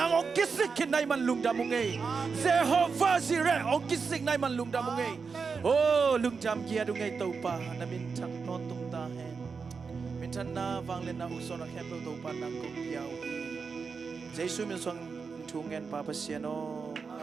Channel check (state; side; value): quieter; left; 5.2 dB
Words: ông kisik kin nai man lung đam mong Jehovah Jireh ông kisik nai man lung đam mong oh lung jam kia du ngay tàu pa na min thak non tung ta hen min than na vang lên na usona khem tàu pa nang kong piao Jesus min song thu ngen pa pasiano